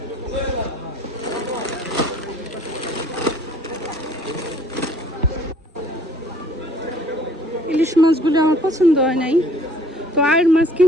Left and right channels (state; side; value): normal; both; correlation 0.57